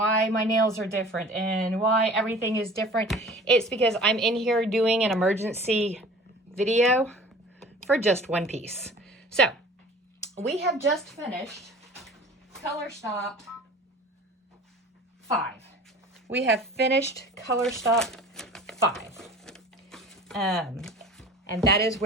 my nails are different and why everything is different, it's because I'm in here doing an emergency video for just one piece. So we have just finished color stop 5. We have finished color stop 5. And that is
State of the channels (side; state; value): both; normal; correlation 0.43